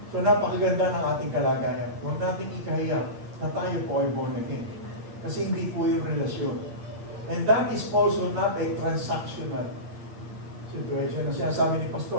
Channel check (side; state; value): left; late; 8.7 ms